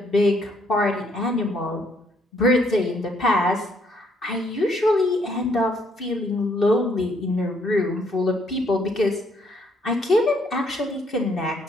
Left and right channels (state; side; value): normal; both; correlation 0.68